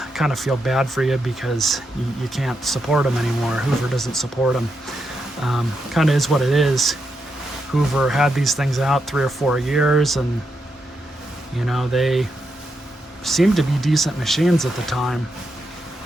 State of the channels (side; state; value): both; normal; correlation 0.83